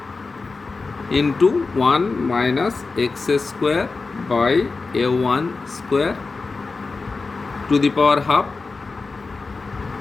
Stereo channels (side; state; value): right; quieter; 4.1 dB